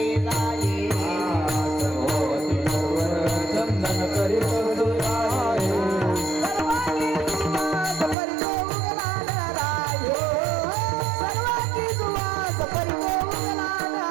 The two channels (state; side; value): drops out; left; at 8.2 s